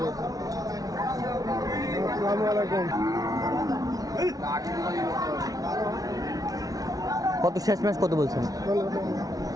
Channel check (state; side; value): late; left; 0.18 ms